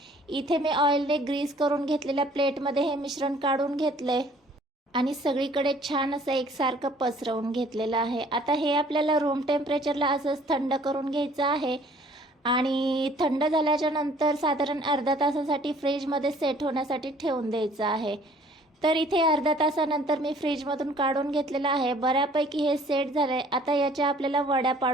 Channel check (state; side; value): normal; both; correlation 0.56